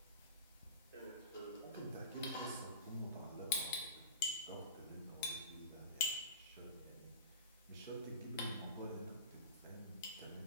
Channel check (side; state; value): both; inverted; correlation -0.36